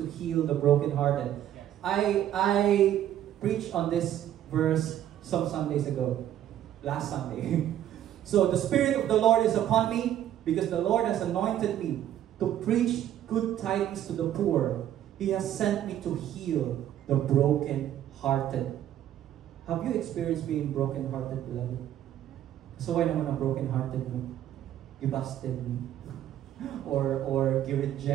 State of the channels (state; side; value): quieter; left; 11.5 dB